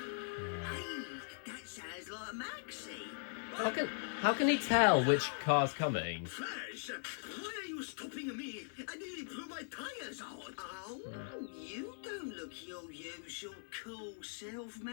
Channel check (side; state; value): right; silent; 51 dB below the other